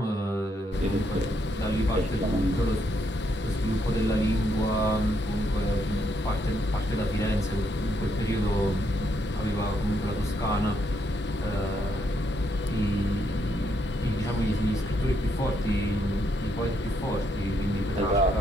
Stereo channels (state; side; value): normal; both; correlation 0.75